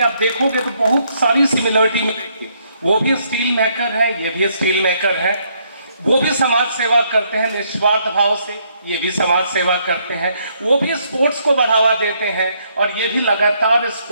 आप देखोगे तो बहुत सारी सिमिलरिटी मिलेगी. वो भी स्टील मेकर है, ये भी स्टील मेकर है. वो भी समाज सेवा करते हैं निस्वार्थ भाव से, ये भी समाज सेवा करते हैं. वो भी स्पोर्ट्स को बढ़ावा देते हैं, और ये भी लगातार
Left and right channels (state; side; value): inverted; both; correlation -0.71